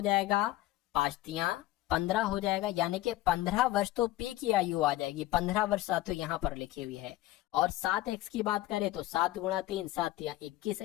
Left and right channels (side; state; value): right; quieter; 16.2 dB